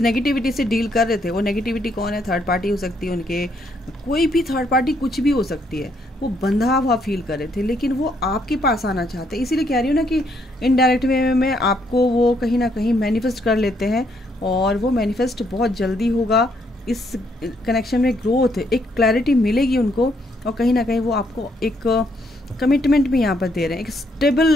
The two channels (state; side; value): normal; both; correlation 0.72